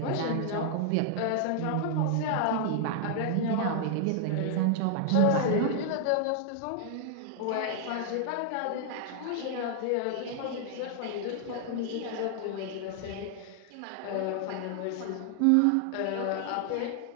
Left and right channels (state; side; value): different; both; correlation 0.00